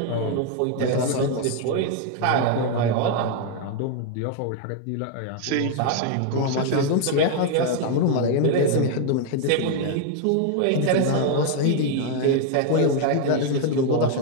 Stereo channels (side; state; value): both; different; correlation 0.00